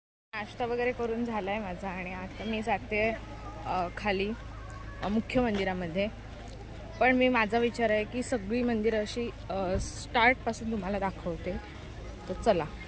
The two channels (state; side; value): identical; both; correlation 1.00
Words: नाश्ता वगैरे करून झाला आहे माझा आणि आता मी जाते खाली मुख्य मंदिरामध्ये। पण मी माझा विचार आहे की सगळी मंदिरं अशी स्टार्टपासून तुम्हाला दाखवते। तर चला।